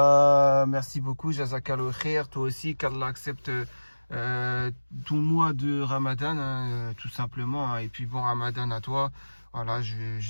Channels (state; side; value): inverted; both; correlation -1.00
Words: Merci beaucoup, Jazakallah khair. Toi aussi, qu'Allah accepte ton mois de Ramadan, hein, tout simplement, hein. Et puis bon Ramadan à toi. Voilà, je